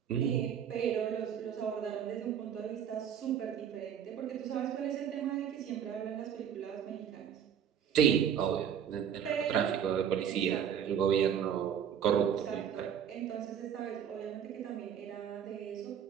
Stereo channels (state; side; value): quieter; left; 8.7 dB